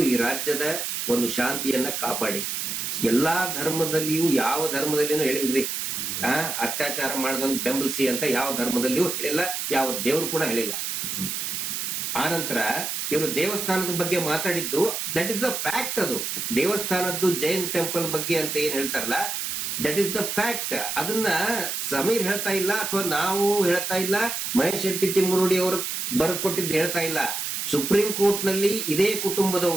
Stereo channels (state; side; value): noise; right; hiss, 3 dB below the sound